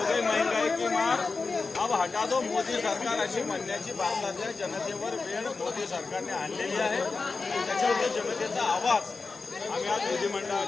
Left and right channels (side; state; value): right; quieter; 4.2 dB